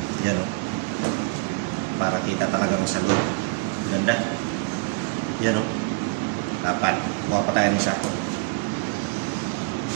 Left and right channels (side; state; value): left; quieter; 26.4 dB